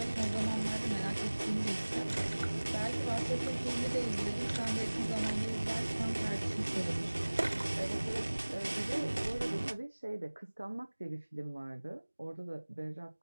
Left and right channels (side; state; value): both; inverted; correlation -1.00